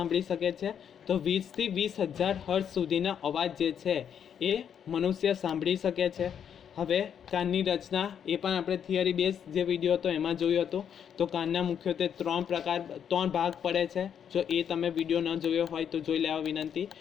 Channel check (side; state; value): right; quieter; 8.3 dB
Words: શકે છે? તો 20 થી 20,000 હર્ટ્ઝ સુધીનો અવાજ જે છે એ મનુષ્ય સાંભળી શકે છે. હવે કાનની રચના એ પણ આપણે થિયરી બેઝ જે વિડીયો હતો એમાં જોયું હતું. તો કાનના મુખ્યત્વે 3 ભાગ પડે છે. જો એ તમે વિડીયો ન જોયો હોય તો જોઈ લેવા વિનંતી.